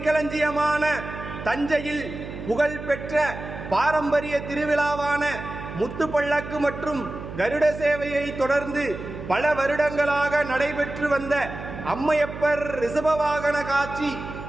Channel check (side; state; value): right; noise; hum, 10 dB below the sound